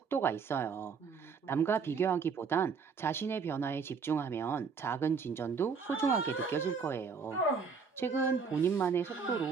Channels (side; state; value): left; quieter; 5.6 dB